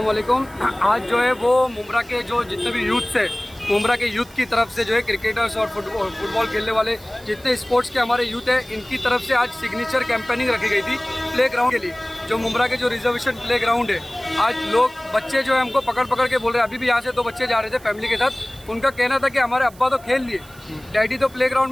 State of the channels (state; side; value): noise; right; hiss, 23 dB below the sound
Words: वालेकुम। आज जो है वो मुमरा के जो जितने भी यूथ है, मुमरा के यूथ की तरफ से जो है क्रिकेटर्स और फुटबॉल खेलने वाले जितने स्पोर्ट्स के हमारे यूथ है, इनकी तरफ से आज सिग्नेचर कैंपेनिंग रखी गई थी प्ले ग्राउंड के लिए। जो मुमरा के जो रिजर्वेशन प्ले ग्राउंड है, आज लोग बच्चे जो है हमको पकड़ पकड़ के बोल रहे हैं। अभी भी यहाँ से 2 बच्चे जा रहे थे फैमिली के साथ। उनका कहना था कि हमारे अब्बा तो खेल लिए, डैडी तो प्ले